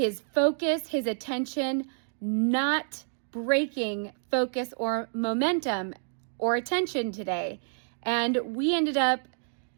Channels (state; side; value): silent; left; digital silence